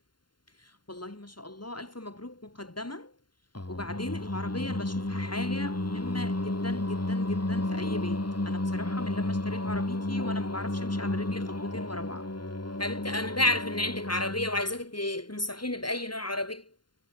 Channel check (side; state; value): right; late; 0.72 ms